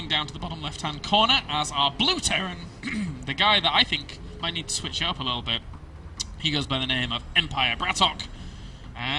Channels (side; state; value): both; identical; correlation 1.00